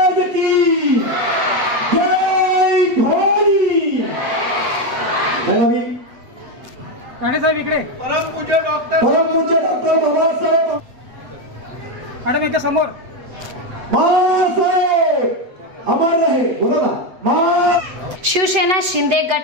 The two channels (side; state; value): left; late; 8.1 ms